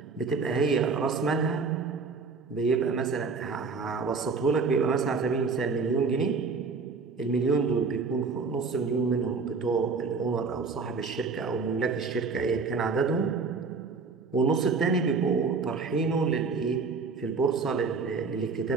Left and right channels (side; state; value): left; quieter; 4.7 dB